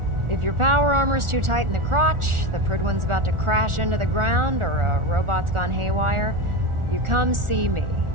If your power armor's too tight in the crotch, the Prt2's about to crash into the ground, or a robot's gone haywire, you come see me.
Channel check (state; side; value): late; left; 1.4 ms